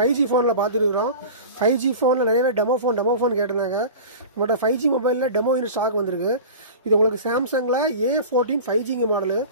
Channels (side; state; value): both; inverted; correlation -0.35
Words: ஃபோனில் பார்த்துருக்குறோம். 5G ஃபோனில் நிறையவே டெமோ ஃபோன் கேட்டிருந்தாங்க. நம்மகிட்ட 5G மொபைலில் டெமோ இன்னும் ஸ்டாக் வந்திருக்கு. இது உங்களுக்கு சாம்சங்கில் A14 5G மாடலு.